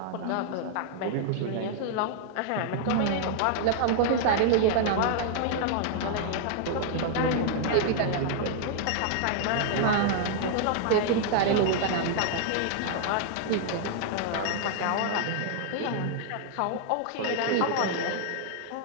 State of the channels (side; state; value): both; different; correlation 0.00